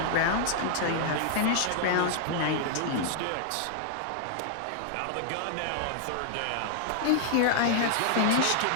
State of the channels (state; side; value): different; both; correlation -0.01